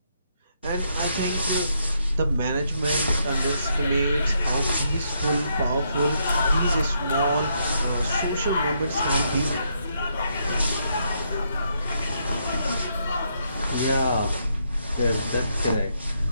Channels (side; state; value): both; inverted; correlation -0.76